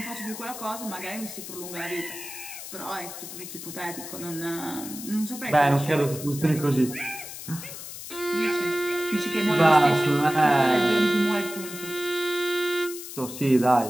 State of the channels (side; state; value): left; noise; hiss, 11 dB below the sound